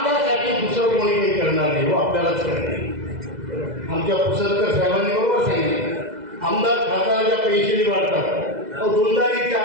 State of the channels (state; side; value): late; left; 2.0 ms